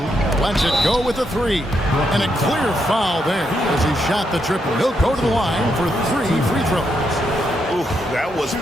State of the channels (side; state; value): both; normal; correlation 0.79